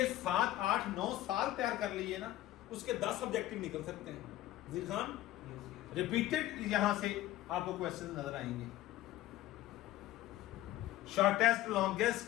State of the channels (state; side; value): quieter; right; 15.0 dB